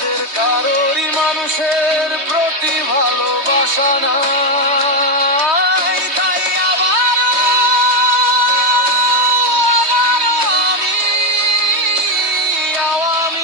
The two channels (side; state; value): left; late; 3.2 ms